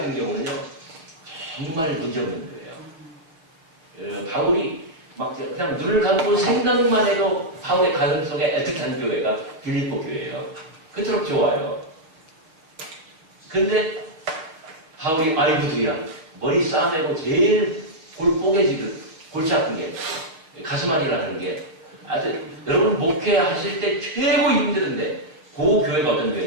경우는요 정말 문제없는 교회예요. 바울이 막 그냥 눈을 감고 생각만 해도 바울의 가슴 속에 애틋한 교회가 빌립보 교회예요. 그토록 좋아요. 근데 바울이 아이고도야 머리 싸매고 제일 골 뽀개지듯 골치 아픈 게 가슴 안이라는 게 아주 여러분 목회하실 때 최고 힘드는데 그 교회가 어떤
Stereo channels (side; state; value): left; late; 6.4 ms